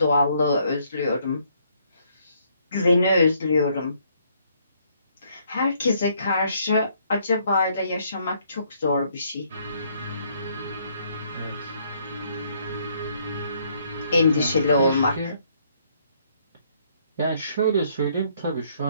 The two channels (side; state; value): both; inverted; correlation -0.68